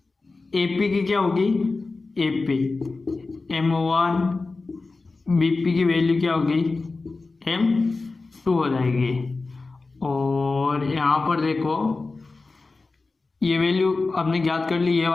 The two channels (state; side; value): quieter; right; 3.7 dB